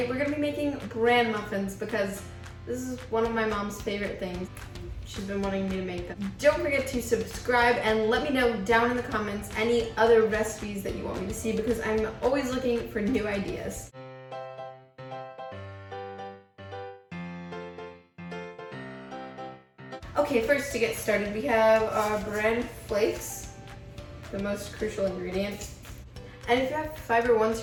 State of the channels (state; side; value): identical; both; correlation 1.00